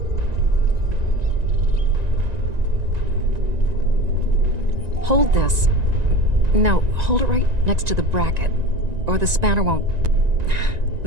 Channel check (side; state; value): left; late; 1.9 ms